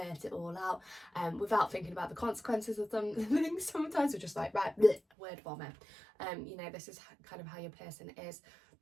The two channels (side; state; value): left; drops out; at 5.0 s